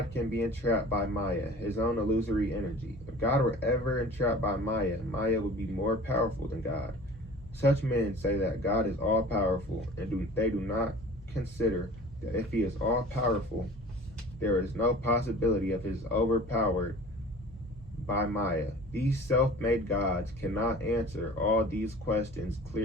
can be entrapped by Maya, his own illusory energy. If God were ever entrapped by Maya, Maya would be more powerful than God. Such men say that God is all-powerful, and they do not consider that if he is all-powerful, there is no possibility of his overpowered by Maya. These self-made gods cannot answer all these questions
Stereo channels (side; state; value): both; normal; correlation 0.43